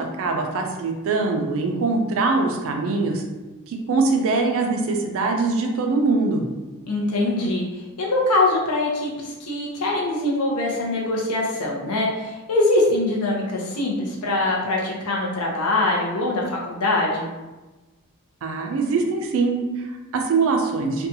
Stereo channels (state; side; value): normal; both; correlation 0.18